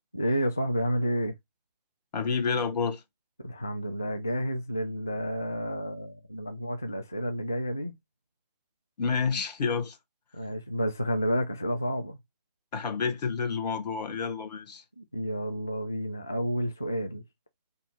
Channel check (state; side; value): inverted; both; correlation -0.77